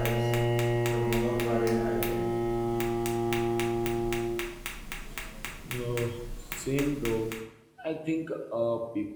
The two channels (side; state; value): both; identical; correlation 1.00